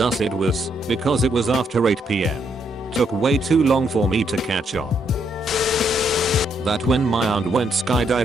us it was because it was after 8 p.m. Took way too long for me to catch on. That when my aunt went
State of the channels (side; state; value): both; normal; correlation 0.75